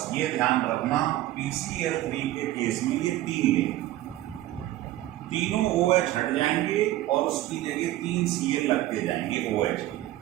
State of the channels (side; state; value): left; quieter; 15.1 dB